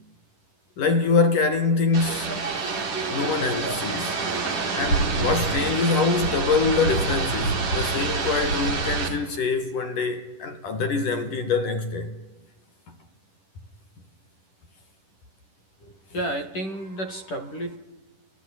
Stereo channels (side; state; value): right; late; 10 ms